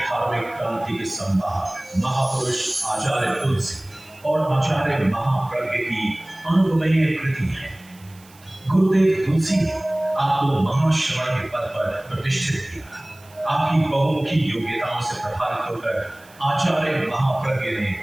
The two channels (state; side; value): noise; right; hiss, 26 dB below the sound